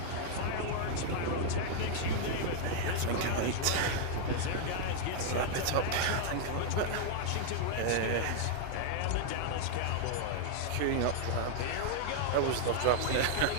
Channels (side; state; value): both; different; correlation 0.00